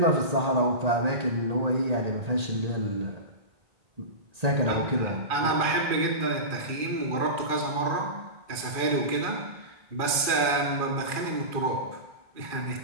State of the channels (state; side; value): late; left; 2.4 ms